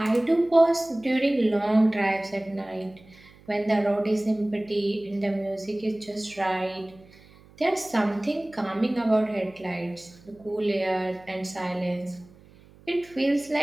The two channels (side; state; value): right; noise; hum, 25 dB below the sound